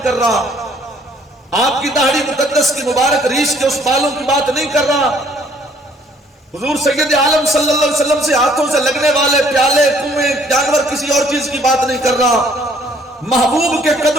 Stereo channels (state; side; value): normal; both; correlation 0.61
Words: کر رہا، آپ کی داڑھی مقدس کی مبارک ریش کے اس بالوں کی بات نہیں کر رہا، حضور سید عالم صلی اللہ علیہ وسلم سے ہاتھوں سے لگنے والے پیالے، کنویں، جانور، کسی اور چیز کی بات نہیں کر رہا، محبوب کے